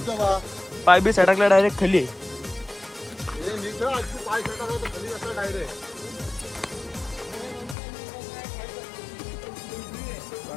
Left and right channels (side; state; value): right; drops out; at 7.8 s